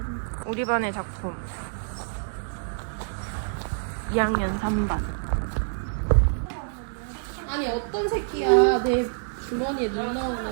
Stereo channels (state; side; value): silent; left; digital silence